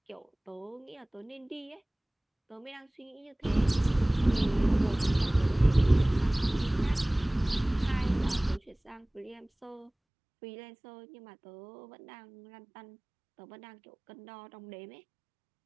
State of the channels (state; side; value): drops out; left; at 9.9 s